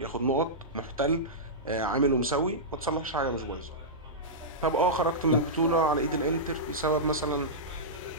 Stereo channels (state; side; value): normal; both; correlation -0.13